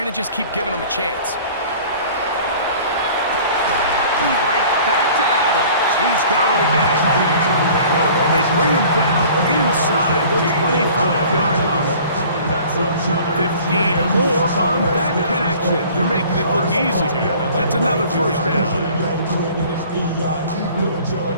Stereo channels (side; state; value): both; inverted; correlation -0.48